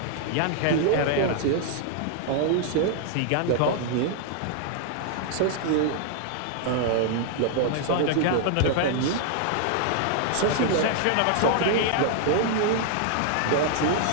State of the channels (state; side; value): different; both; correlation -0.01